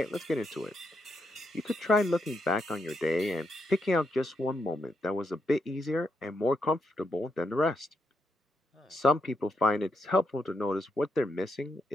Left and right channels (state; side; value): normal; both; correlation 0.81